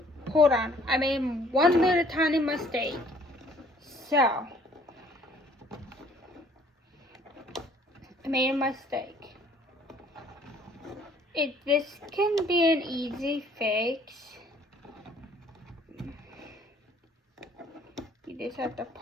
Hold on, I made one little tiny mistake. So, I made a mistake. This can be an easy fix. You just have to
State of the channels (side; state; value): both; normal; correlation 0.58